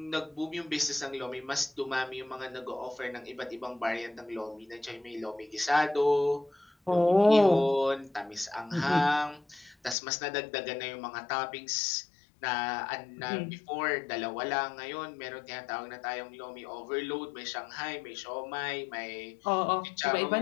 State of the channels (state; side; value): drops out; right; at 10.0 s